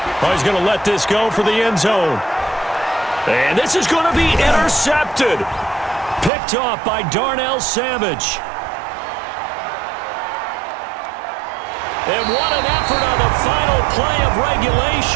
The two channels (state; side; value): drops out; left; at 6.3 s